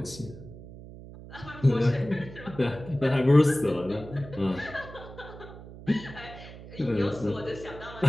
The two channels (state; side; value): noise; right; hum, 15 dB below the sound